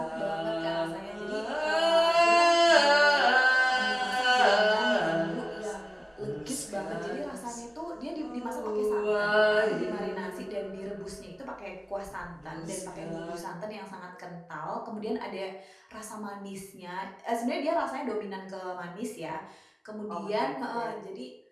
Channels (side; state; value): both; identical; correlation 1.00